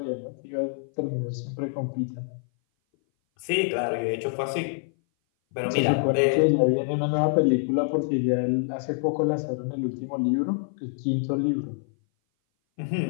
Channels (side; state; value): right; silent; 58 dB below the other